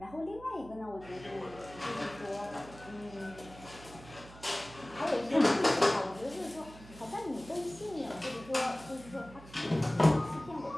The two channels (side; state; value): right; noise; hum, 18 dB below the sound